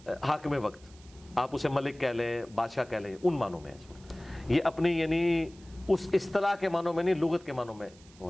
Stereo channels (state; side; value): noise; right; hiss, 25 dB below the sound